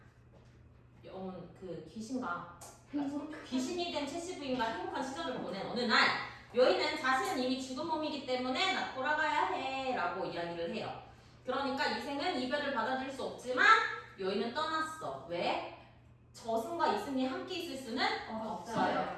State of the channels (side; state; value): both; identical; correlation 1.00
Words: 그 귀신이 된 최씨 부인과 행복한 시절을 보낸 어느 날 여인은 자신은 이미 죽은 몸이기 때문에 나 돌아가야 해 라고 이야기를 해요. 그러니까 이생은 이별을 받아들일 수 없지만 여인은 떠났어. 왜? 저승과 이승이 함께 있을 수는